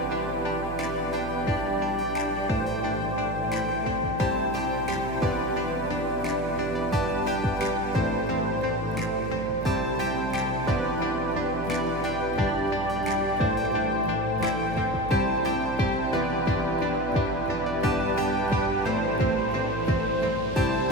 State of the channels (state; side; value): noise; right; hum, 8 dB below the sound